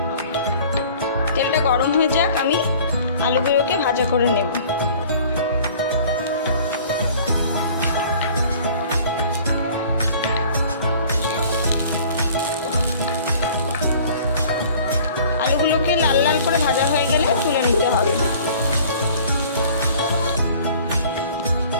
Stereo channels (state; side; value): inverted; both; correlation -0.49